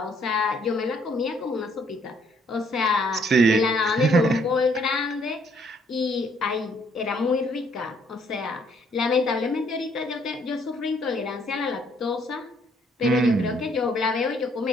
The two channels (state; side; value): normal; both; correlation 0.66